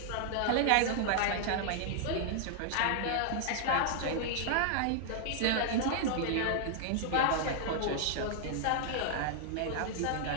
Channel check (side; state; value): both; different; correlation -0.01